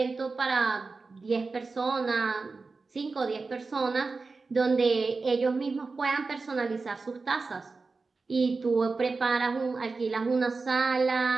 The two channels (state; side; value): quieter; left; 4.1 dB